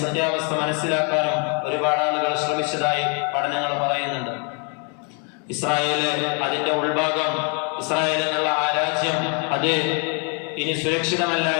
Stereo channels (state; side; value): quieter; right; 37.8 dB